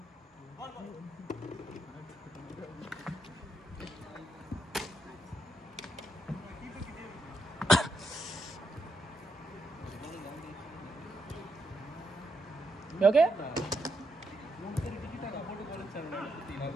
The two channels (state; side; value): normal; both; correlation 0.80